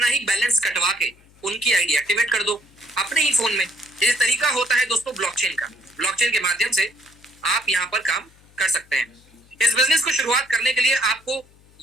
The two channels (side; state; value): left; noise; hum, 29 dB below the sound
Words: ही बैलेंस कटवा के उनकी आईडी एक्टिवेट कर दो अपने ही फोन में। ये तरीका होता है दोस्तों ब्लॉकचेन का। ब्लॉकचेन के माध्यम से आप यहाँ पर काम कर सकते हैं। इस बिजनेस को शुरुआत करने के लिए आपको,